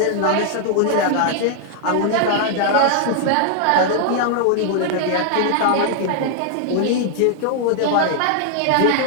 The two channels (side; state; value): both; different; correlation 0.00